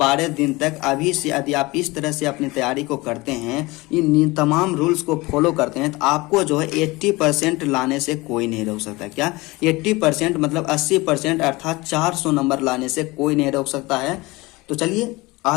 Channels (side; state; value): right; quieter; 22.3 dB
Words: दिन तक अभी से यदि आप इस तरह से अपनी तैयारी को करते हैं, इन तमाम रूल्स को फॉलो करते हैं, तो आपको जो है 80% लाने से कोई नहीं रोक सकता। क्या 80% मतलब 80%, अर्थात 400 नंबर लाने से कोई नहीं रोक सकता है। तो चलिए